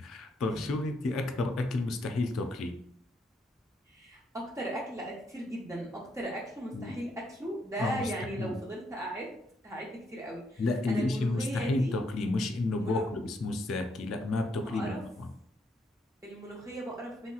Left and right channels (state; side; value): normal; both; correlation 0.75